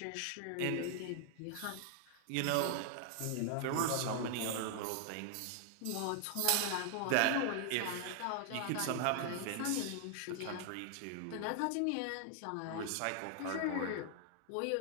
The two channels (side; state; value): both; different; correlation 0.00